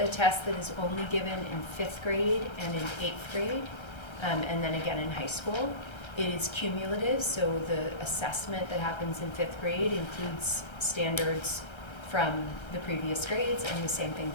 test that is only given in 5th grade and in 8th grade, and then again in high school. It is cumulative, so the assessment that happens in 5th grade includes standards from the previous grades, and the same thing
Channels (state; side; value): late; right; 1.3 ms